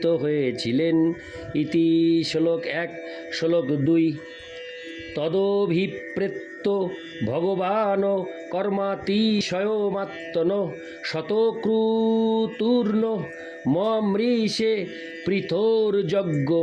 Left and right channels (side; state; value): both; identical; correlation 1.00